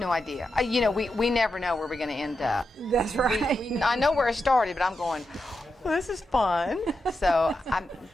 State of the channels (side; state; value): both; normal; correlation 0.87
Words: idea. We never know where we're going to end up. That's right. I know where it started, but I'm going, well, this is fun. So I'm